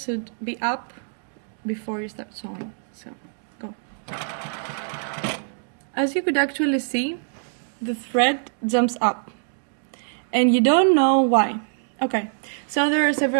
be up before you start sewing. So, go. As you could actually see, the thread jumps up. And you don't know why. Okay, so there are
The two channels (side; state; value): left; silent; digital silence